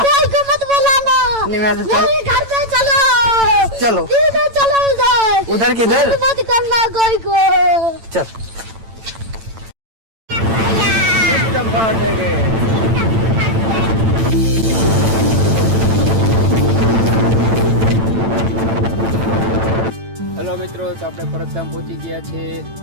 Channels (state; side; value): late; left; 8.9 ms